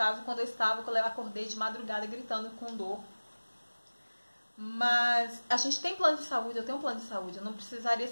quando eu acordei de madrugada gritando com dor. Mas a gente tem plano de saúde, eu tenho um plano de saúde. Eu não precisaria,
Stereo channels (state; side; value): inverted; both; correlation -1.00